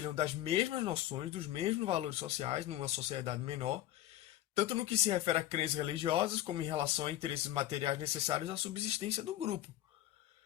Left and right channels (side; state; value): right; quieter; 13.8 dB